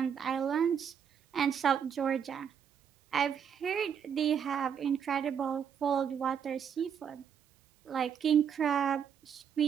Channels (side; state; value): left; quieter; 7.8 dB